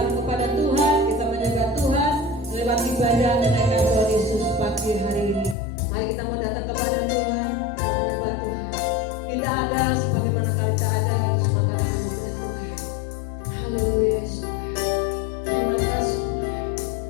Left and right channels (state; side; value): drops out; right; at 5.6 s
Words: kepada Tuhan, kita menyembah Tuhan lewat ibadah kenaikan Tuhan Yesus pagi hari ini. Mari kita mau datang kepada Tuhan, kita menyembah Tuhan. Kita ada sebagaimana kita ada, semoga kita kepada Tuhan. Haleluya Yesus. Terima kasih.